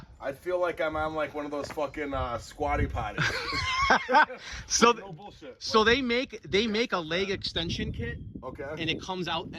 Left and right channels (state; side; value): identical; both; correlation 1.00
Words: I'd feel like I'm on like one of those fucking squatty potties. So No bullshit. so they make a leg extension kit, Okay. and it comes out